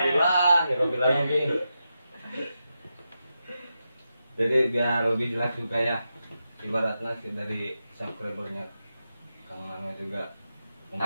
jadi biar lebih jelas juga ya ibaratnya sih dari subscribernya Kang Ano juga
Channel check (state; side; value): inverted; both; correlation -0.88